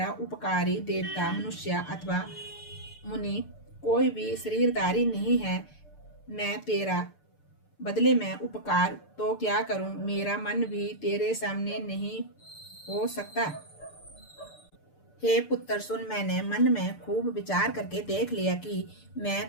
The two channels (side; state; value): right; late; 6.8 ms